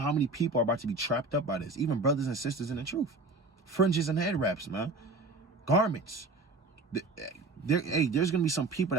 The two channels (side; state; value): left; quieter; 3.3 dB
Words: many people are about to be trapped up by this, even brothers and sisters in the truth. Fringes and head wraps, man. Garments. There's gonna be some people